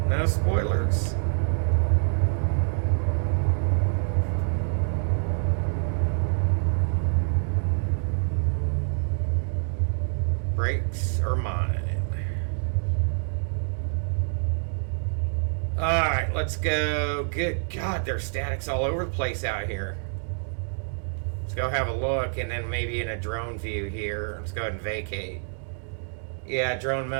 No spoilers. brakes are mine. Alright, let's go. Good God, there's statics all over the place out here. Let's go have a look, and then maybe in a drone view here. Let's go ahead and vacate. Yeah, drone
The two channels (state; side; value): silent; left; 60 dB below the other